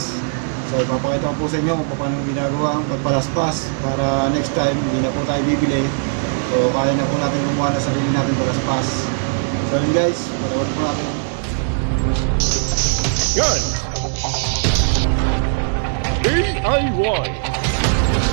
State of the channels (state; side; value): silent; left; 66 dB below the other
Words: So ipapakita ko po sa inyo kung paano ginagawa ang pagpalaspas para next time hindi na po tayo bibili. So kaya na po natin gumawa na sarili natin palaspas. So yun guys, panood po natin. Good! DIY